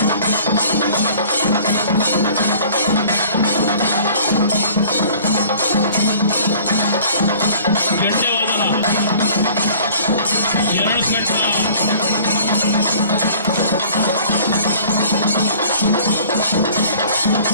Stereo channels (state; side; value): inverted; both; correlation -0.50